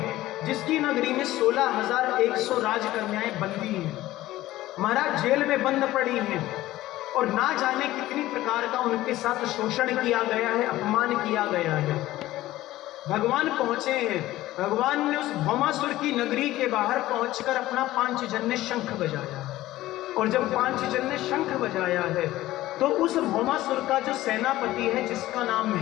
जिसकी नगरी में 16,100 राजकन्याएं बंदी हैं, महाराज जेल में बंद पड़ी हैं। और ना जाने कितनी प्रकार का उनके साथ शोषण किया गया है, अपमान किया गया है। भगवान पहुंचे हैं। भगवान ने उस भौमासुर की नगरी के बाहर पहुंचकर अपना पांचजन्य शंख बजाया। और जब पांचजन्य शंख बजाया है तो उस भौमासुर का जो सेनापति है जिसका नाम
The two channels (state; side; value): quieter; right; 16.0 dB